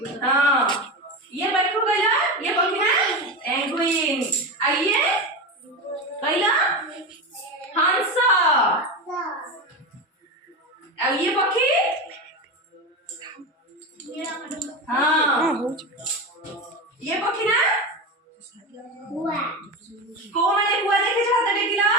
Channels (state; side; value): normal; both; correlation 0.20